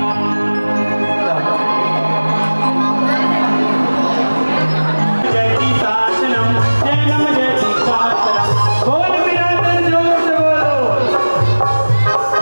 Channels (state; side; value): inverted; both; correlation -1.00